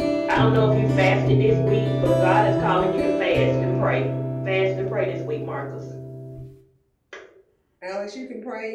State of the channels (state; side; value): identical; both; correlation 1.00